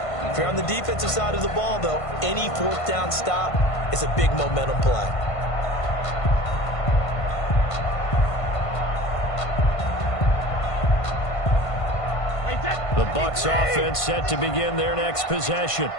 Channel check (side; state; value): right; late; 1.5 ms